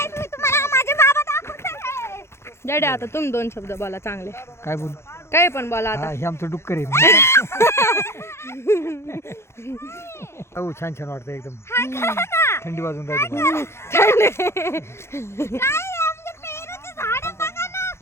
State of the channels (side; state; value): right; late; 0.13 ms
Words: मी तुम्हाला माझे बाबा दाखवते. डॅडी आता तुम्ही दोन शब्द बोला चांगले. काय बोलू? काही पण बोला आता. हे आमचं डुक्कर आहे. हो छान छान वाटतं एकदम. थंडी वाजून राहिली. काय आमचे पेरूचे झाड बघा ना.